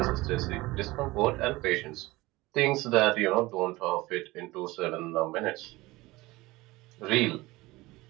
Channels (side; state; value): left; quieter; 20.4 dB